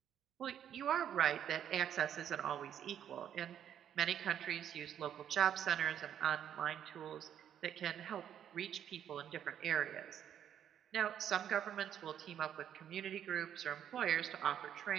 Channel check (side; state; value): left; quieter; 9.7 dB